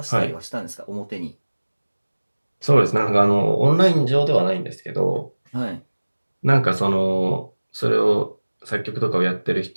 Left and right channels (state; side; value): inverted; both; correlation -1.00